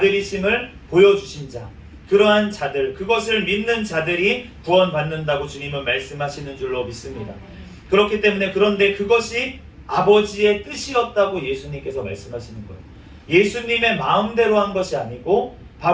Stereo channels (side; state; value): both; identical; correlation 1.00